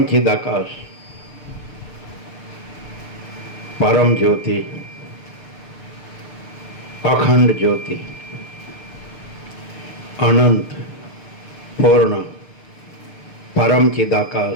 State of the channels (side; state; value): right; late; 6.8 ms